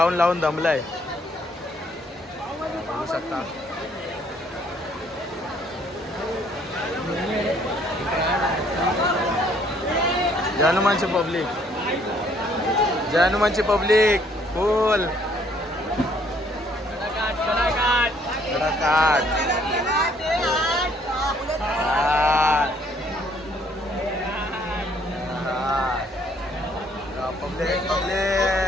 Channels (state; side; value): normal; both; correlation 0.64